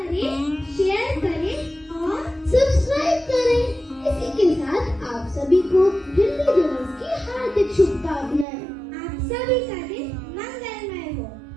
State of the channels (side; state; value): left; drops out; at 8.5 s